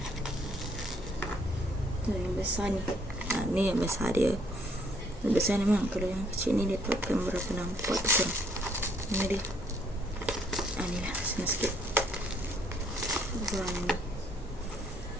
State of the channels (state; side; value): normal; both; correlation 0.66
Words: Tu yang besar ni. Ni yang besar dia. Yang besar ni memang. Kalau yang kecil ni dia takkan berapa nampak tu korang. Ni dia. Ni lah. Senang sikit. Warna ni.